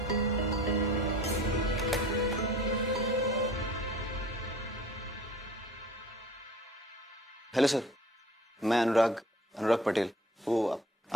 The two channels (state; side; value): normal; both; correlation 0.46